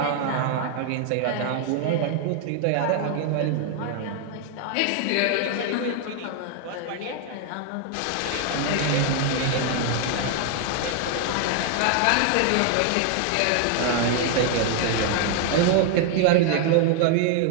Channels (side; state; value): both; different; correlation 0.00